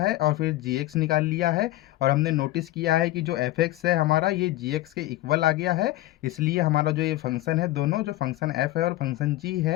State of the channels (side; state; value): right; quieter; 16.6 dB